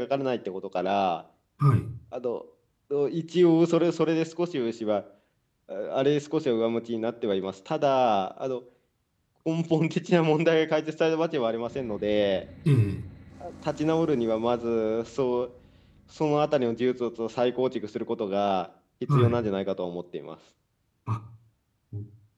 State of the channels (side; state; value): both; identical; correlation 1.00